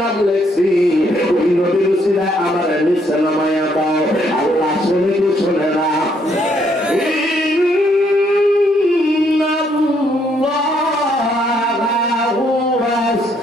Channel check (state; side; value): normal; both; correlation 0.71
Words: লেখছি ওই নবীর উসিলায় আমার নিচে নামায়া দাও আল্লাহ শুনে কি শুনে না